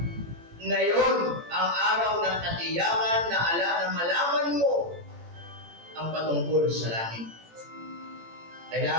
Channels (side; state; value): left; late; 18 ms